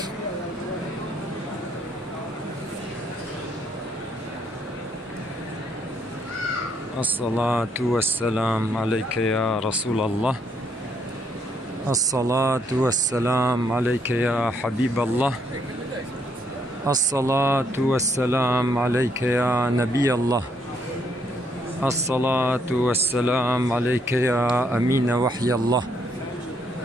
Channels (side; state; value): both; normal; correlation 0.71